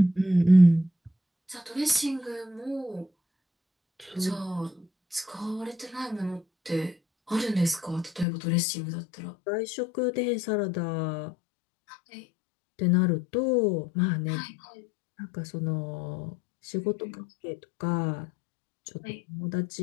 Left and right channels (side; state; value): right; drops out; at 8.2 s